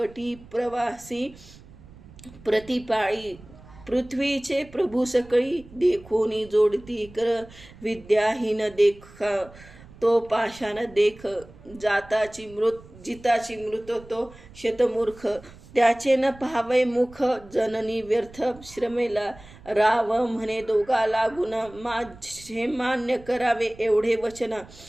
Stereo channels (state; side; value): noise; right; rumble, 21 dB below the sound